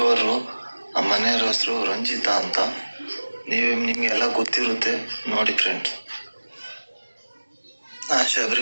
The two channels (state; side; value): inverted; both; correlation -1.00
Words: ನಮ್ಮ ಮನೆಯವ್ರ ಹೆಸರು ರಂಜಿತಾ ಅಂತ. ನಿಮ್ಗೆಲ್ಲ ಗೊತ್ತಿರುತ್ತೆ ನೋಡಿ ಫ್ರೆಂಡ್ಸ್.